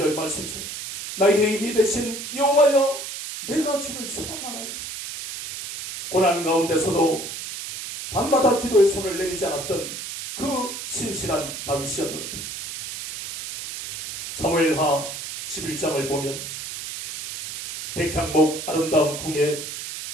말씀처럼 나의 힘이 되신 여호와여 내가 주를 사랑하나이다. 고난 가운데서도 밤마다 기도의 손을 내리지 않았던 그 신실한 다윗이었는데 사무엘하 11장을 보면 백향목 아름다운 궁에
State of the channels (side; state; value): right; noise; hiss, 8 dB below the sound